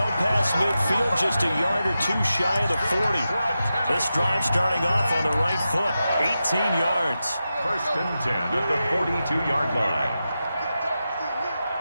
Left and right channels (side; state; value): both; inverted; correlation -0.91